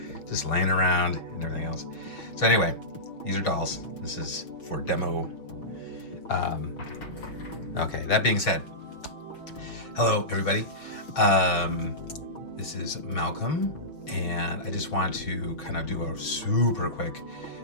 just laying around and everything else. So anyway, these are dolls. This is for demo. Okay, that being said, hello everybody. This is Malcolm, and I just want to kind of do a super quick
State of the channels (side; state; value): right; late; 6.2 ms